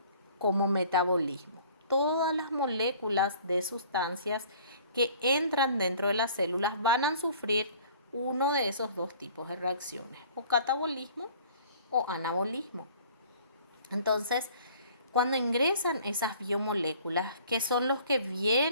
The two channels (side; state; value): both; inverted; correlation -0.52